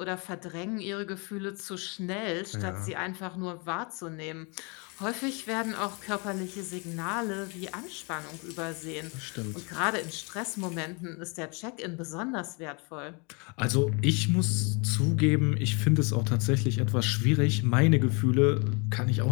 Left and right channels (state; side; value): quieter; right; 32.0 dB